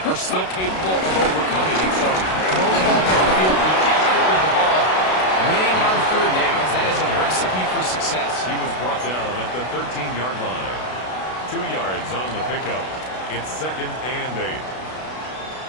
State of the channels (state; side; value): late; right; 32 ms